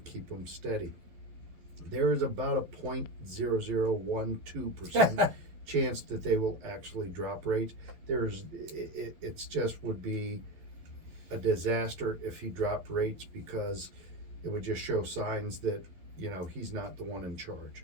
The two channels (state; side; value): late; left; 12 ms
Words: keep them steady. There is about a 0.0012% chance that they will actually drop rates. It's just would be a disaster if he dropped rates, because it would just show signs that, he's not the one in